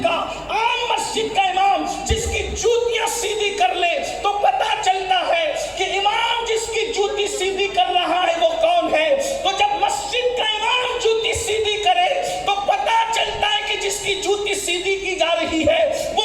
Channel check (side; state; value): both; identical; correlation 1.00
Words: کا، عام مسجد کا امام جس کی جوتیاں سیدھی کر لے تو پتا چلتا ہے کہ امام جس کی جوتی سیدھی کر رہا ہے وہ کون ہے۔ تو جب مسجد کا امام جوتی سیدھی کرے تو پتا چلتا ہے کہ جس کی جوتی سیدھی کی جا رہی ہے